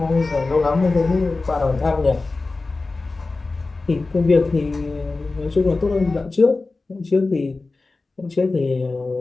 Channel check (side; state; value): right; quieter; 3.5 dB